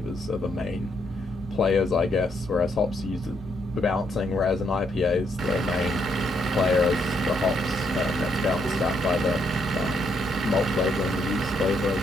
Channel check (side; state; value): both; normal; correlation 0.74